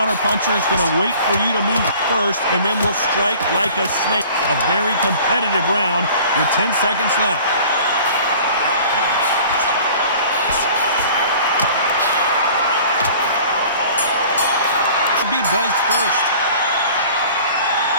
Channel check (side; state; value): both; inverted; correlation -0.47